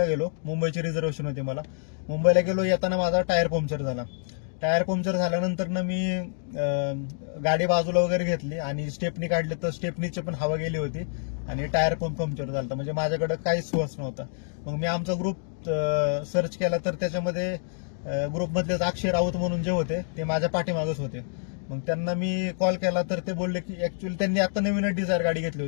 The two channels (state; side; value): silent; right; digital silence